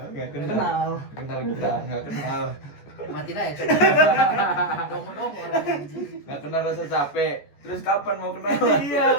Enggak Nggak kenal. Kenal kita, enggak kenal. Mati aja coba. Dong orang anjing. Enggak kenal rasa capek. Terus kapan mau kenal? Iya,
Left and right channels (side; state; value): right; late; 14 ms